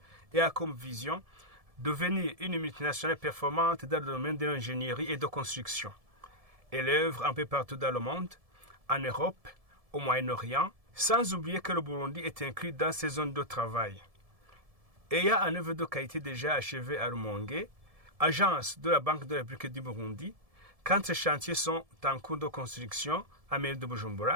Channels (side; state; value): left; late; 1.7 ms